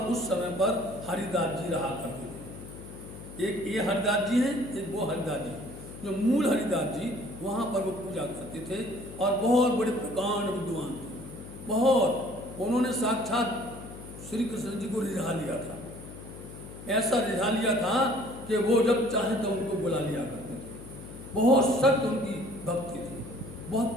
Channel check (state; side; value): noise; left; hum, 14 dB below the sound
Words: उस समय पर हरिदास जी रहा करते थे। एक ये हरिदास जी हैं, एक वो हरिदास जी। जो मूल हरिदास जी वहाँ पर वो पूजा करते थे और बहुत बड़े प्रकांड विद्वान थे, बहुत। उन्होंने साक्षात श्री कृष्ण जी को रिझा लिया था, ऐसा रिझा लिया था कि वो जब चाहे तो उनको बुला लिया करते थे। बहुत सख्त उनकी भक्ति थी,